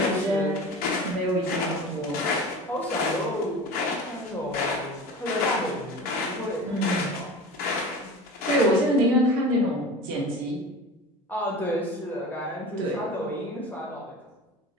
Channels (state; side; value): normal; both; correlation 0.34